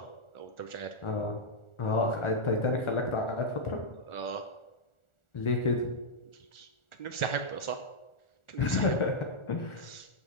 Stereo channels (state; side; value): late; right; 1.4 ms